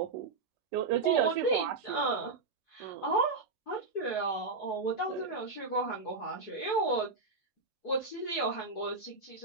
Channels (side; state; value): left; quieter; 4.0 dB